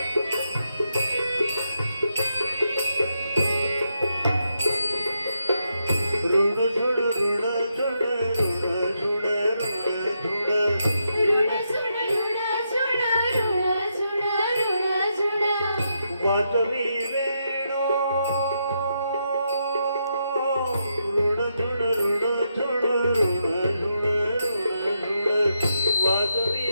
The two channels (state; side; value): inverted; both; correlation -0.82